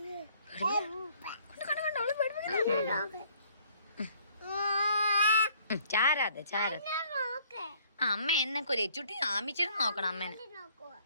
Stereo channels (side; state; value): both; inverted; correlation -0.61